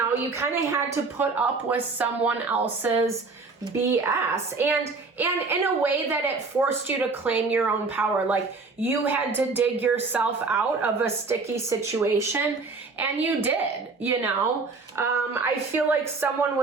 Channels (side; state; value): left; quieter; 4.1 dB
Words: you kind of had to put up with someone else's BS, and in a way that it forced you to claim your own power. Like, you had to dig yourself out of a sticky situation, and you did, you know. I feel like someone